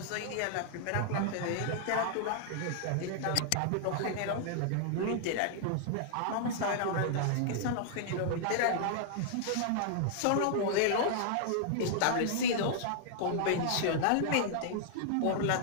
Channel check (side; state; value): both; different; correlation -0.01